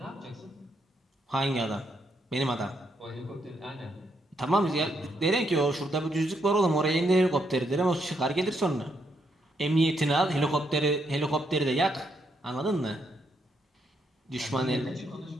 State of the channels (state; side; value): normal; both; correlation 0.77